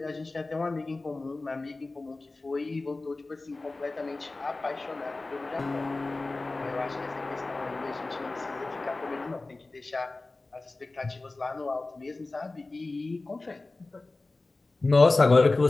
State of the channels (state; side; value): quieter; right; 3.3 dB